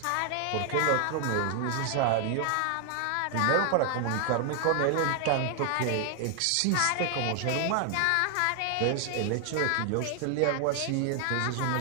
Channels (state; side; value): different; both; correlation 0.00